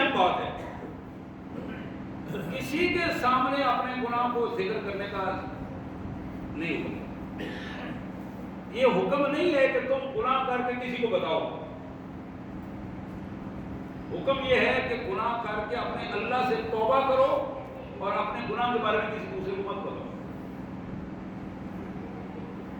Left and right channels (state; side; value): identical; both; correlation 1.00